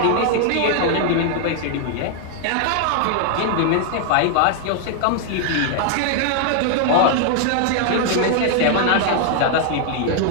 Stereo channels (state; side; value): different; both; correlation 0.00